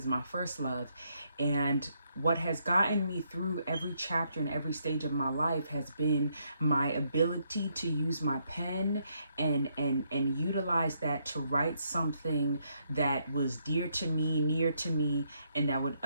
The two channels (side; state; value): both; inverted; correlation -0.75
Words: my first love. And what has gotten me through every chapter and every stage of my life has been my ability to use my pen and utilize that to write something that was dear to me, near to me, and that would